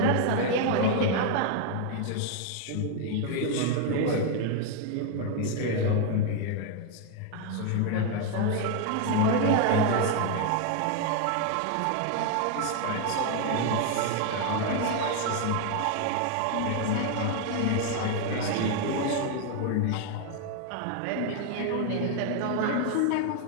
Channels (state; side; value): different; both; correlation 0.00